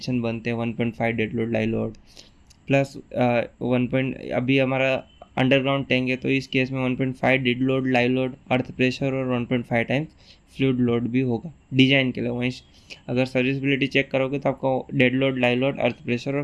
बनते हैं। 1.5 dead load live load plus अभी हमारा अंडरग्राउंड टैंक है तो इस केस में 1.5 dead load, live load, earth pressure और 1.5 टाइम्स फ्लूइड लोड भी होगा डिजाइन के लिए। वहीं अगर सर्विसिबिलिटी चेक करोगे तो आपको dead load, live load, earth pressure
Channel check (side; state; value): both; identical; correlation 1.00